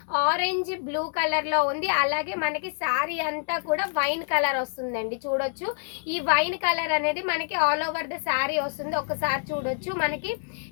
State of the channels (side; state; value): right; silent; 60 dB below the other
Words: ఆరెంజ్ బ్లూ కలర్ లో ఉంది. అలాగే మనకి శారీ అంతా కూడా వైన్ కలర్ వస్తుందండి. చూడొచ్చు, ఈ వైన్ కలర్ అనేది మనకి ఆల్ ఓవర్ ద శారీ వస్తుంది. ఒకసారి చూడొచ్చు, మనకి